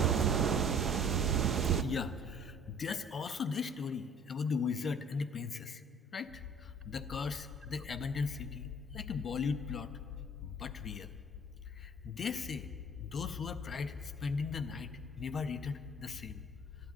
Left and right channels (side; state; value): both; normal; correlation 0.52